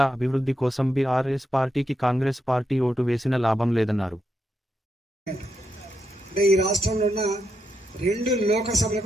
అభివృద్ధి కోసం బీఆర్ఎస్ పార్టీకి కాంగ్రెస్ పార్టీ ఓటు వేసిన లాభం లేదన్నారు. ఈ రాష్ట్రంలో ఉన్న 2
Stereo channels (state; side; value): normal; both; correlation 0.84